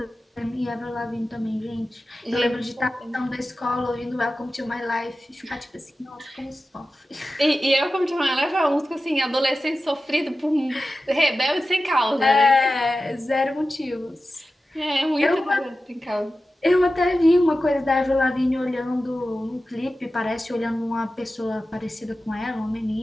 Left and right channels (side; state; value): both; normal; correlation 0.94